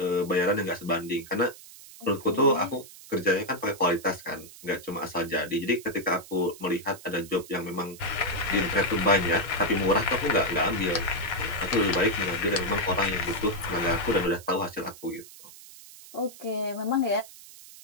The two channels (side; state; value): right; noise; hiss, 18 dB below the sound